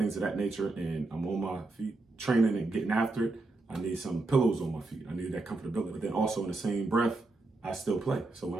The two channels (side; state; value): left; quieter; 3.2 dB